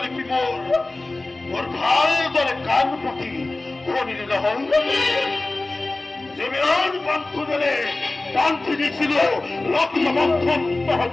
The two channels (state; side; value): quieter; right; 3.0 dB